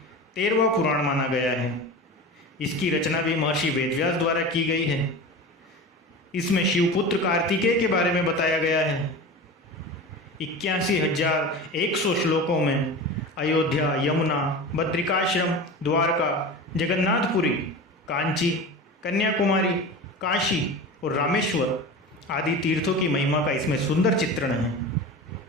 13वां पुराण माना गया है। इसकी रचना भी महर्षि वेदव्यास द्वारा की गई है। इसमें शिवपुत्र कार्तिकेय के बारे में बताया गया है। 81,100 श्लोकों में अयोध्या, यमुना, बद्रिकाश्रम, द्वारका, जगन्नाथपुरी, कांची, कन्याकुमारी, काशी और रामेश्वर आदि तीर्थों की महिमा का इसमें सुंदर चित्रण है।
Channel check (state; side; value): normal; both; correlation 0.31